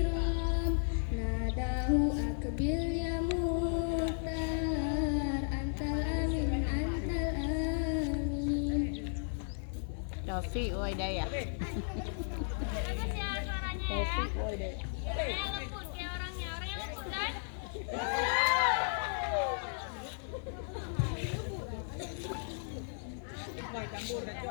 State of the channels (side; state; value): right; silent; 55 dB below the other